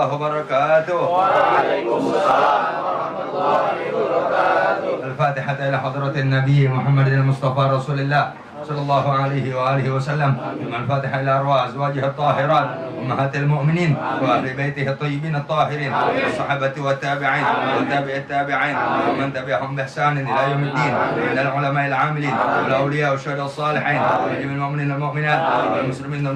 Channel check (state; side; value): identical; both; correlation 1.00